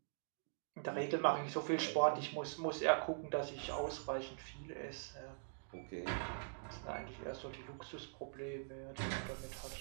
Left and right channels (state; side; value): silent; left; digital silence